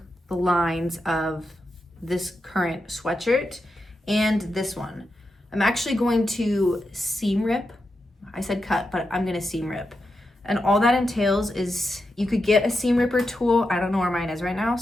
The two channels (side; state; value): both; normal; correlation 0.88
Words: the lines of this current sweatshirt and this one. I'm actually going to seam rip. I said cut, but I'm going to seam rip. And all that entails is you could get a seam ripper tool. I don't know where mine is right now,